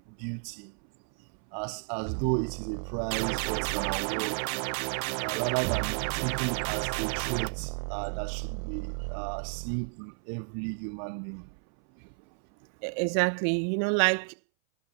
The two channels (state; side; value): silent; left; 57 dB below the other